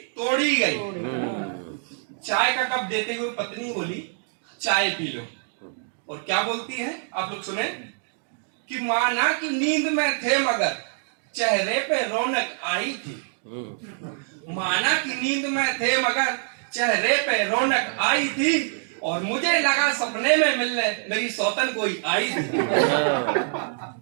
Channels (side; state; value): left; silent; digital silence